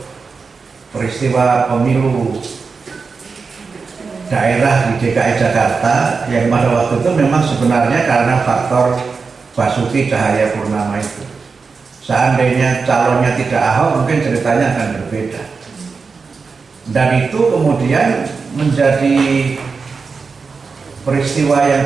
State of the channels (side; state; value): left; quieter; 4.8 dB